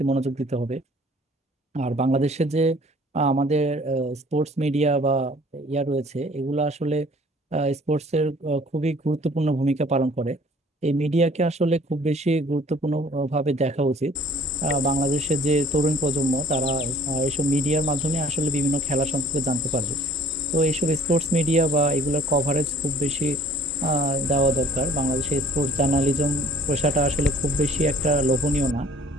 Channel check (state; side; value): normal; both; correlation 0.54